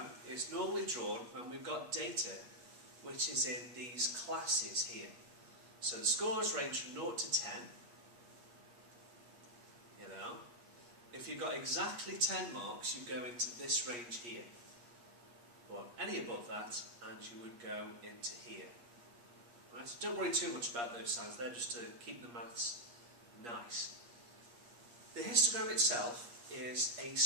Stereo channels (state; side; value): late; left; 8.4 ms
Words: is normally drawn when we've got data which is in these classes here. So the scores range from 0 to 10. If you've got exactly 10 marks, you go into this range here. Or any above that, and you would go into here. Right, so don't worry too much about those signs, they're just to keep the maths nice. The histogram itself is a